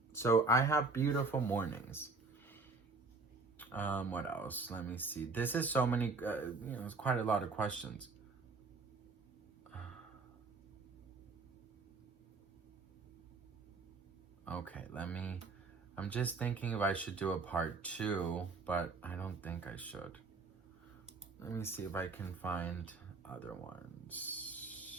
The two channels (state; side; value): quieter; left; 3.9 dB